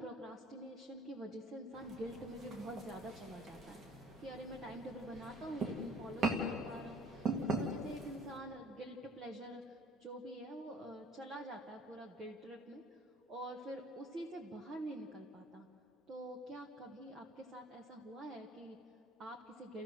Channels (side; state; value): both; normal; correlation 0.54